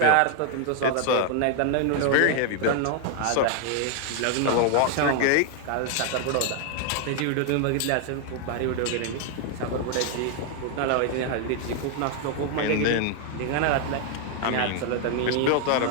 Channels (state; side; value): different; both; correlation 0.00